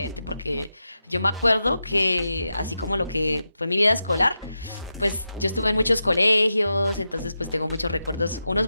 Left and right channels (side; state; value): both; inverted; correlation -0.89